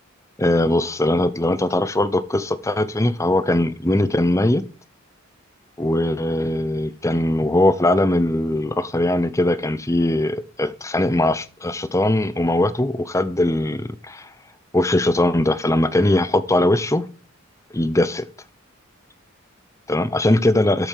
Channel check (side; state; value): both; normal; correlation 0.80